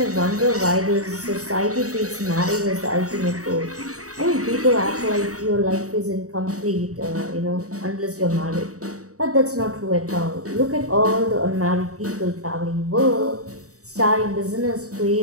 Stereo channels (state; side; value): late; left; 0.66 ms